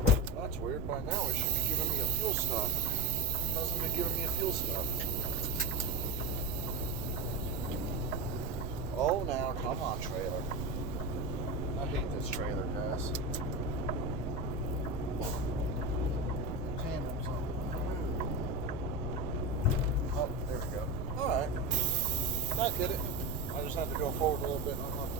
That's weird. By now it should be giving me a fuel stop. It hasn't been giving me a fuel stop. Oh, now, come on, trailer. I hate this trailer, guys. Tandems on. Oh, there we go. Alright. That did it. I just had to go forward a little bit and unlock the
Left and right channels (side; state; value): right; noise; rumble, 6 dB below the sound